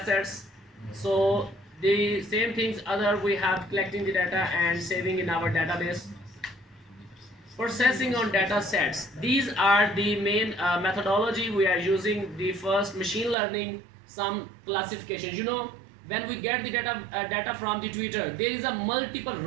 sets. So the same things other we have collecting the data and saving in our database. Processing on data sets. These are the main methodology we are using. The first, machine learning, some classifications. You know, when we get the data from the Twitter, there is a multiple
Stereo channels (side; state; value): left; drops out; at 13.4 s